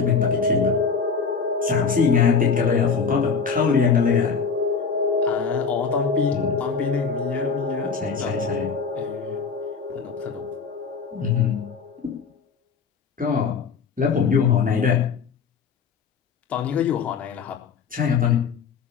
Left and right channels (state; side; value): quieter; right; 5.6 dB